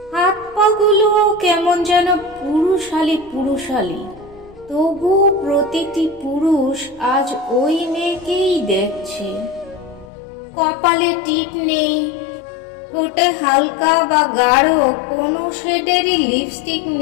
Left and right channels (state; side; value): drops out; right; at 10.1 s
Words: হাত পাগুলো কেমন যেন পুরুষালী পুরুষালী, তবু প্রতিটি পুরুষ আজ ওই মেয়েকেই দেখছে। কপালে টিপ নেই, ঠোঁটে হালকা বা গাঢ় কোনো শেডেরই লিপস্টিক